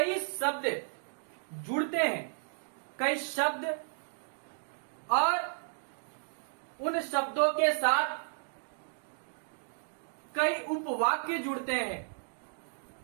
शब्द जुड़ते हैं, कई शब्द और उन शब्दों के साथ कई उपवाक्य जुड़ते हैं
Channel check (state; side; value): silent; left; digital silence